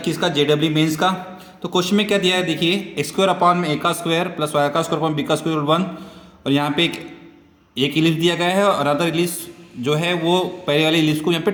का जेडब्ल्यू मेंस का। तो क्वेश्चन में क्या दिया है देखिए, एक्स स्क्वायर अपॉन में ए का स्क्वायर प्लस वाई का स्क्वायर अपॉन बी का स्क्वायर 1। और यहाँ पे एक इलिप्स दिया गया है और अदर इलिप्स जो है वो पहले वाले इलिप्स को यहाँ पे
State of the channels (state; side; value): identical; both; correlation 1.00